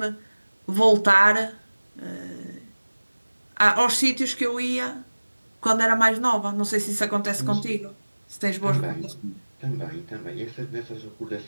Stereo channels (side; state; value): both; inverted; correlation -1.00